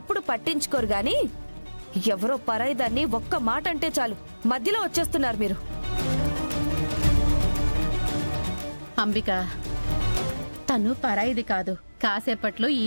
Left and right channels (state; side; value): inverted; both; correlation -1.00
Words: పట్టించుకోరు గాని ఎవరో పరాయిదాన్ని ఒక్క మాట అంటే చాలు మధ్యలో వచ్చేస్తున్నారు మీరు. అంబిక, తను పరాయిది కాదు, కాసేపట్లో ఈ